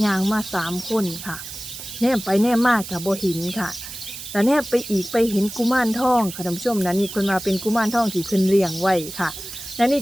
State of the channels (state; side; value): noise; right; hiss, 11 dB below the sound